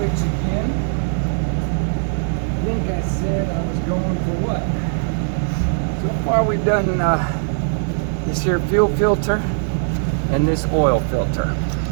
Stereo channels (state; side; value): silent; left; digital silence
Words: again. I think I said I was going for what? So far we've done this here fuel filter and this oil filter.